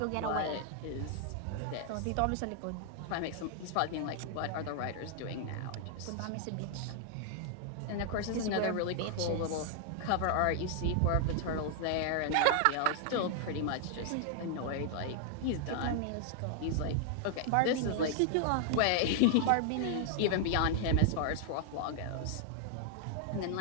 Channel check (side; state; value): both; different; correlation 0.00